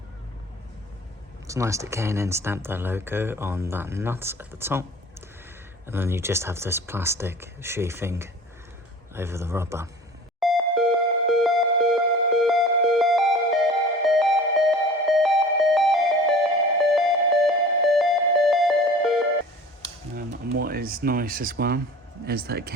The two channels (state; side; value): normal; both; correlation 0.41